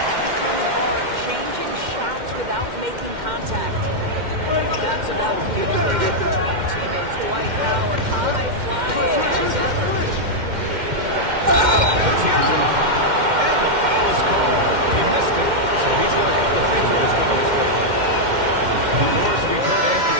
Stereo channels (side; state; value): left; late; 2.1 ms